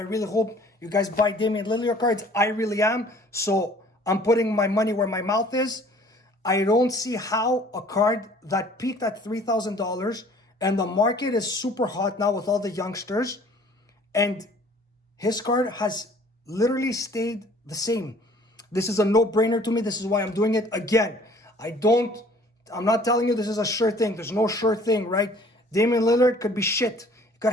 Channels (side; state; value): both; normal; correlation 0.53